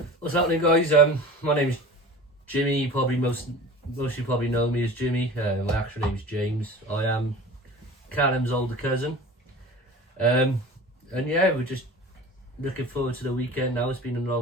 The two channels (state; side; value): normal; both; correlation 0.38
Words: What's happening, guys? My name's Jimmy. You probably most of you probably know me as Jimmy. My actual name's James. I am Callum's older cousin. And yeah, we're just looking forward to the weekend now. It's been